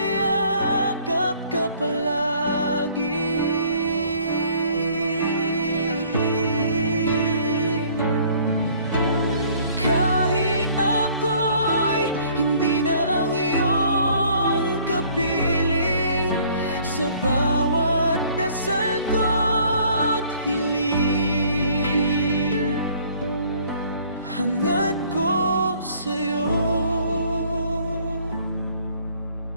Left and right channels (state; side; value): inverted; both; correlation -0.58